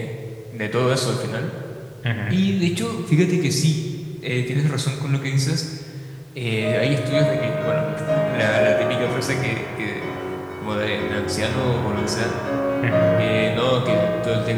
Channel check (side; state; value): both; identical; correlation 1.00